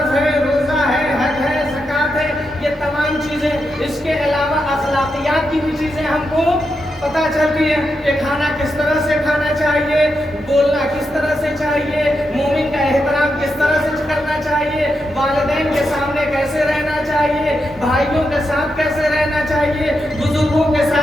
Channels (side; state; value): both; normal; correlation 0.85